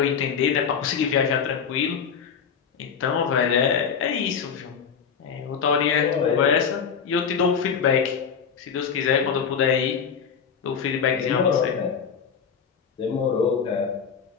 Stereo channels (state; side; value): quieter; right; 6.8 dB